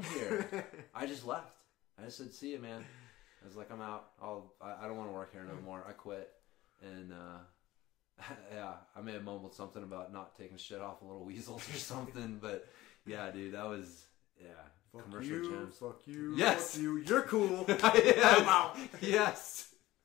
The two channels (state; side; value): quieter; right; 17.1 dB